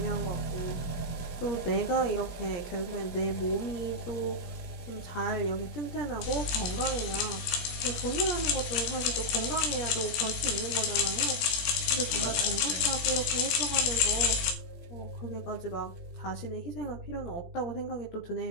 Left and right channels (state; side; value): late; right; 18 ms